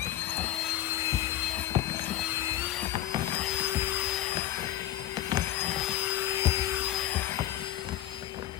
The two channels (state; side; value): quieter; right; 13.2 dB